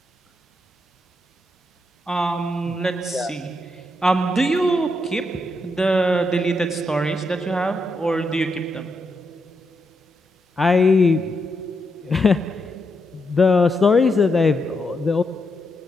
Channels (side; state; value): both; normal; correlation 0.82